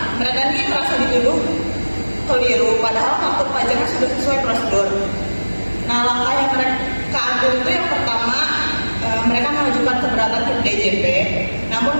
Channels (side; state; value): both; inverted; correlation -1.00